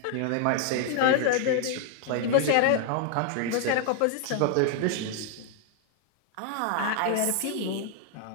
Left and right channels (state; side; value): different; both; correlation 0.00